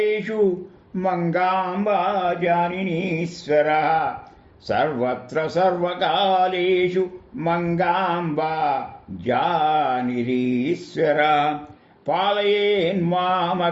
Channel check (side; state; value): both; identical; correlation 1.00